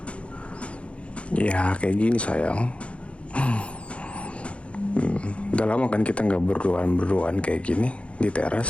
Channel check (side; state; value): right; late; 0.061 ms